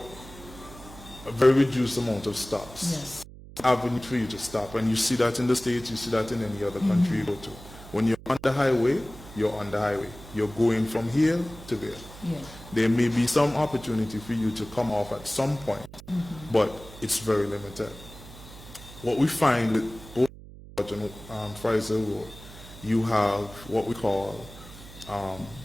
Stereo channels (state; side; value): noise; right; hum, 17 dB below the sound